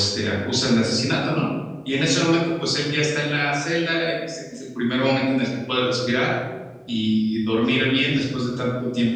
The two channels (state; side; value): identical; both; correlation 1.00